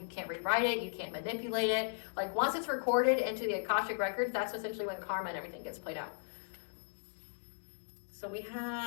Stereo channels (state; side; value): silent; right; digital silence